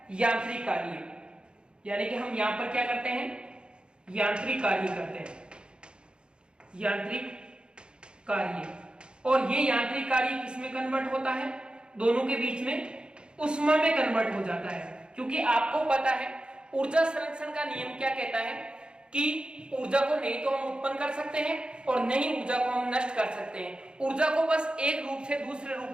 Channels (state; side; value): late; left; 0.052 ms